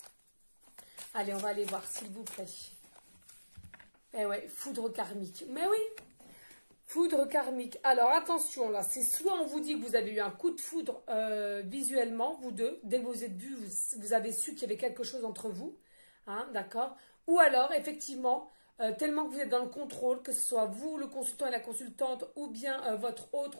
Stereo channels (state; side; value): inverted; both; correlation -1.00